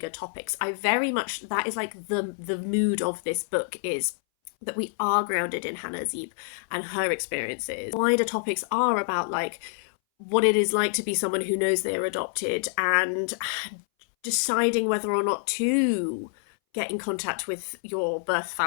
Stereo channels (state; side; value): silent; right; 60 dB below the other